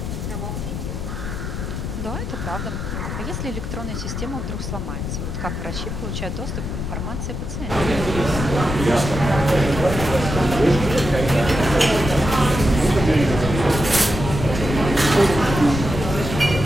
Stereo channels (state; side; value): noise; left; rumble, 5 dB below the sound